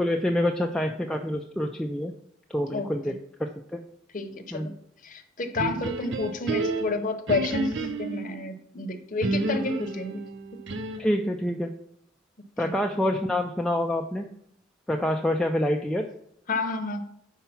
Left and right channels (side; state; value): both; normal; correlation 0.63